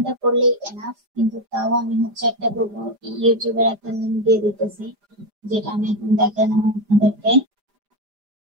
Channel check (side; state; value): left; late; 5.0 ms